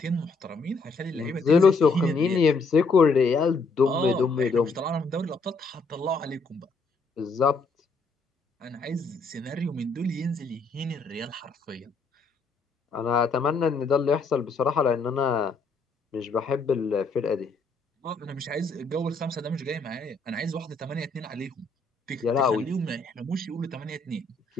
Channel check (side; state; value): right; quieter; 3.7 dB